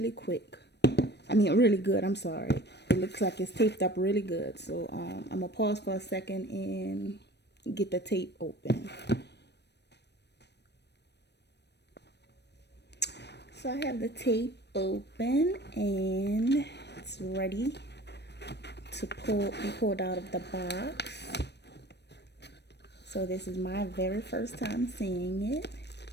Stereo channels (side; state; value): right; late; 0.50 ms